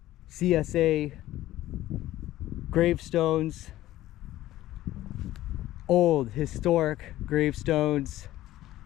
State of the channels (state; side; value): quieter; right; 15.0 dB